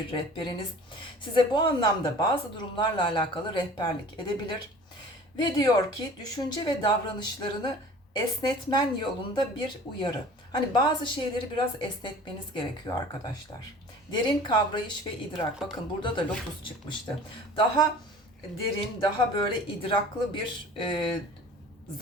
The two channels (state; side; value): normal; both; correlation 0.44